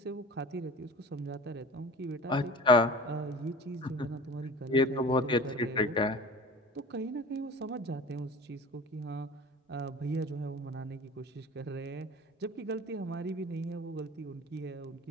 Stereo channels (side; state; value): both; normal; correlation 0.39